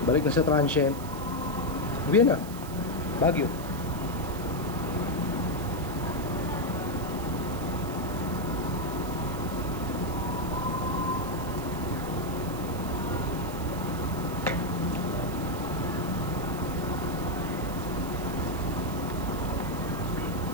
balik na sa transient. Uwi na, Baguio.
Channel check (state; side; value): noise; right; hiss, 15 dB below the sound